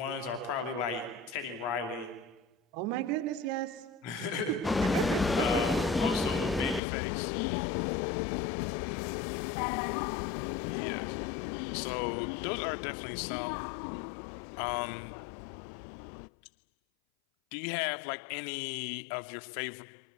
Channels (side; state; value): right; drops out; at 6.8 s